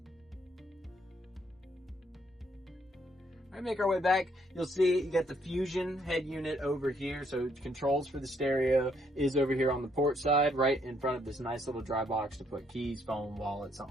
All right, make our way back. You'll see you got the Fusion head unit over here. So controls for the stereo is over here on the port side, right in front of this nice little dry box to put keys, phone, wallet,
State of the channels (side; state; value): both; normal; correlation 0.70